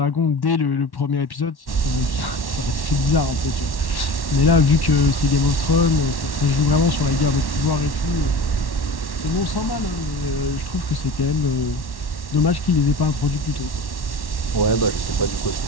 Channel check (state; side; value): late; right; 1.1 ms